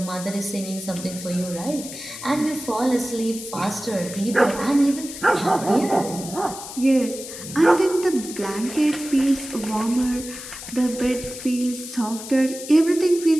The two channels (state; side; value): noise; left; hiss, 11 dB below the sound